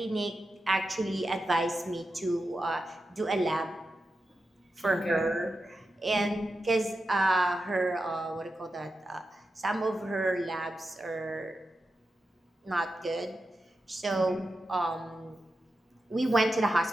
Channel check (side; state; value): both; normal; correlation 0.90